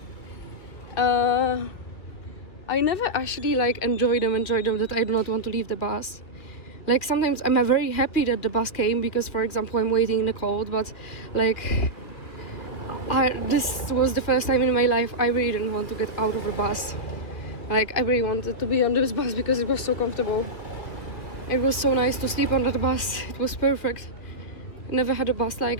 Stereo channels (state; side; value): late; right; 2.8 ms